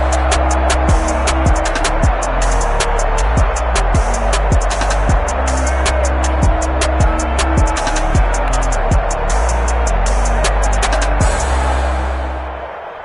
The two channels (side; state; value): both; identical; correlation 1.00